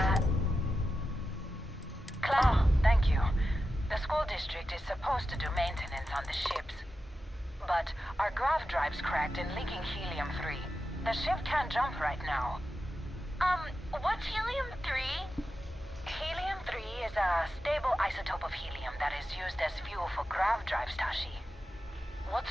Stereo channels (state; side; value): normal; both; correlation 0.91